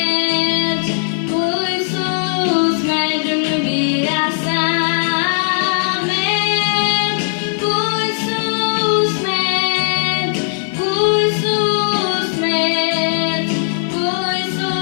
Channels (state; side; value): silent; right; 63 dB below the other